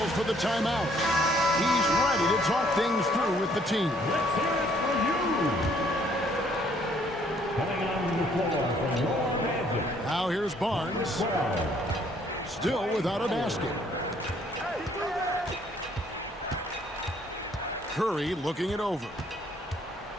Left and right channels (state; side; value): normal; both; correlation 0.64